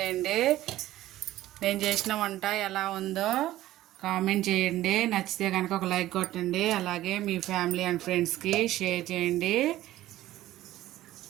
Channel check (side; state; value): left; quieter; 15.0 dB